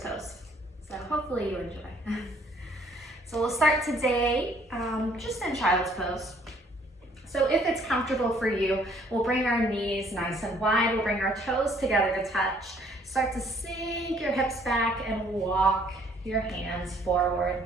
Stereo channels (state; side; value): normal; both; correlation 0.62